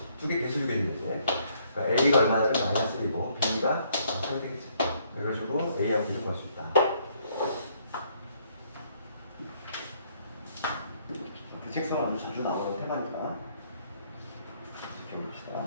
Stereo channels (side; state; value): both; inverted; correlation -0.68